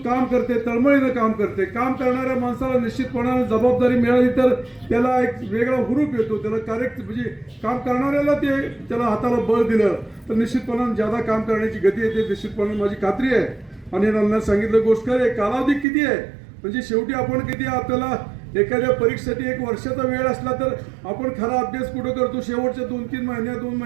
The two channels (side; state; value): left; drops out; at 15.9 s